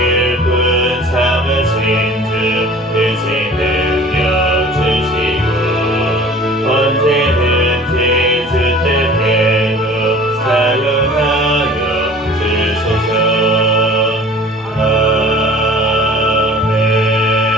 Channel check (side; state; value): both; normal; correlation 0.46